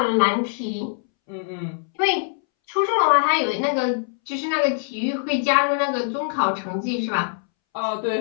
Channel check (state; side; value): silent; right; 64 dB below the other